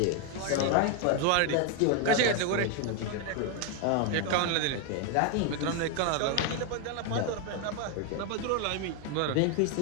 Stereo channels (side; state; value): both; different; correlation 0.01